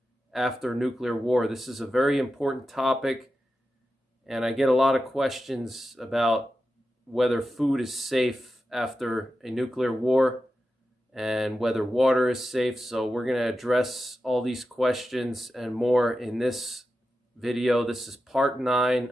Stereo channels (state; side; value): normal; both; correlation 0.91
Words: after nuclear war. This is a very important topic, and I get a lot of questions about whether food is safe after a nuclear war and whether water is safe. So we're going to address all these questions and more in this video. This is part 9